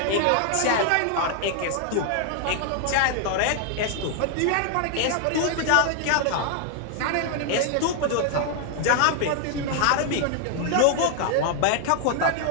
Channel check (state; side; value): different; both; correlation 0.00